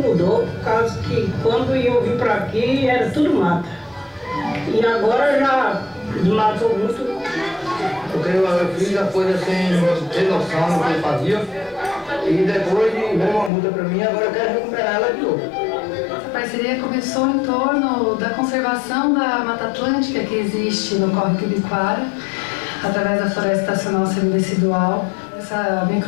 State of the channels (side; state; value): right; drops out; at 13.5 s